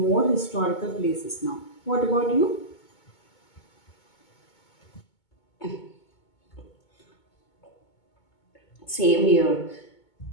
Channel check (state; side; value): late; right; 2.2 ms